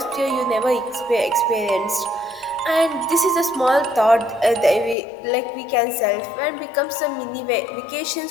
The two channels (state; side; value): drops out; right; at 5.0 s